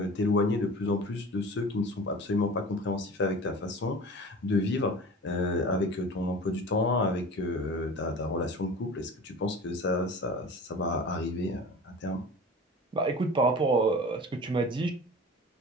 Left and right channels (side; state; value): both; normal; correlation 0.38